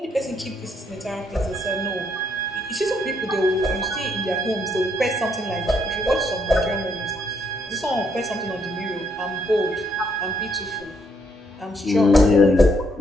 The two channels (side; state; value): both; normal; correlation 0.73